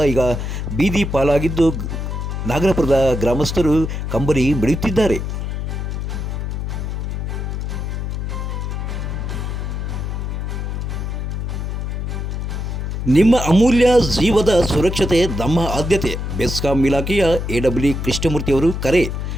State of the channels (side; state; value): left; noise; hum, 3 dB below the sound